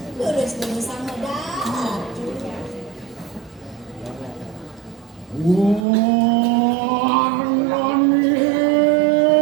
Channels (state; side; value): drops out; left; at 5.9 s